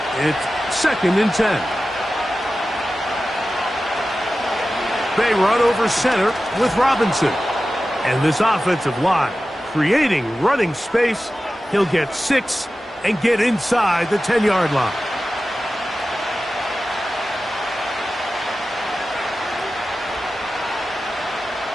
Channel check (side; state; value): both; normal; correlation 0.94